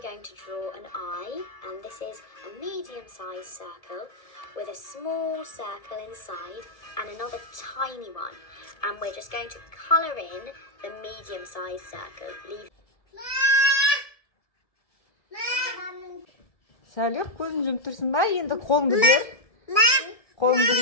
going to draw an eye, and this is a medium-sized circle with a small circle inside and another tiny one. And we're just going to colour in the medium-sized circle. Salih, көзін жұмып тұрсың ба? Енді қолыңды бер. Қолыңды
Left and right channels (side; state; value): right; late; 1.4 ms